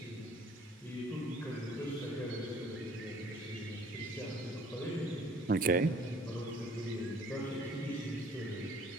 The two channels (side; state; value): both; normal; correlation 0.55